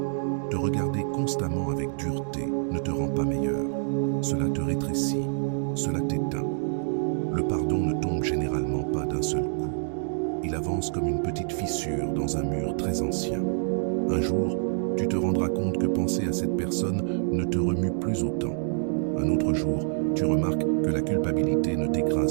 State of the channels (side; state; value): left; silent; digital silence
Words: Te regarder constamment avec dureté ne te rend pas meilleur. Cela te rétrécit, cela t'éteint. Le pardon ne tombe généralement pas d'un seul coup. Il avance comme une petite fissure dans un mur très ancien. Un jour, tu te rendras compte que penser à cette personne ne te remue plus autant. Un autre jour, tu remarques que la culpabilité ne